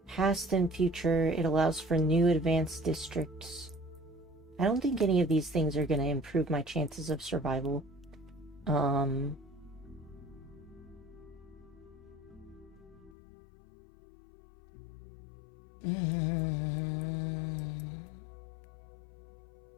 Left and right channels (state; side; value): drops out; right; at 13.2 s